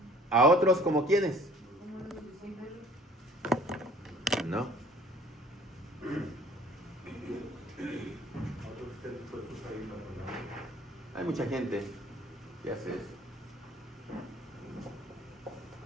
¿A otros como quienes? No. Hay mucha gente que hace eso.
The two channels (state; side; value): normal; both; correlation 0.53